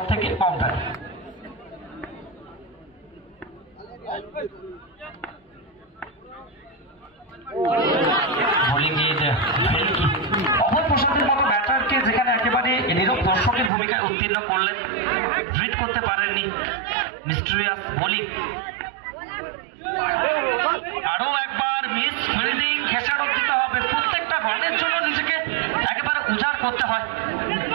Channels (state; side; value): drops out; left; at 13.7 s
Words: থেকে বাউন্ডারি। অভয় প্রসাদের মতো ব্যাটারকে যেখানে একেবারে নীরব দর্শকের ভূমিকায় উত্তীর্ণ করলেন, রিড করতে পারেননি মিস্টেরিয়াস বোলিং। আরো একবার মিস ফিল্ডিং, খেসারত দিতে হবে। প্রত্যেকটা রানের জন্য নিজেকে একেবারে উজাড় করতে হয়,